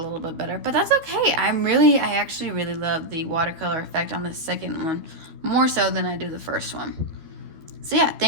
bit better, but that's okay. I actually really love the watercolor effect on the second one, more so than I do the first one. So yeah,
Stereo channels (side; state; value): left; late; 12 ms